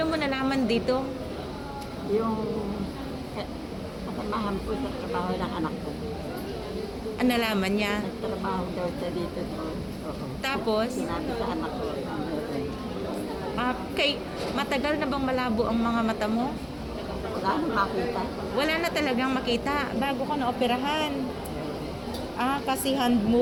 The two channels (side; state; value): both; identical; correlation 1.00